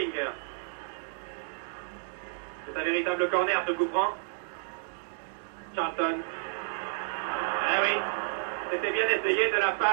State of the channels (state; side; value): silent; left; digital silence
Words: C'est C'est un véritable corner, ce coup franc. Charlton. Eh oui, c'était bien essayé de la